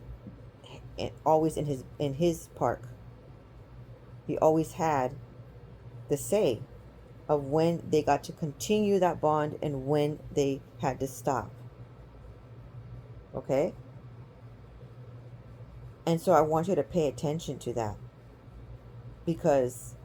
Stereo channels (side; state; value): both; identical; correlation 1.00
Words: always in his park. He always had the say of when they got to continue that bond and when they had to stop. Okay? And so I want you to pay attention to that, because